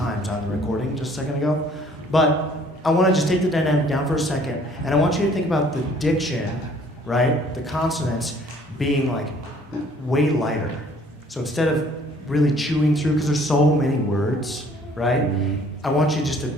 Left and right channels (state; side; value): normal; both; correlation 0.57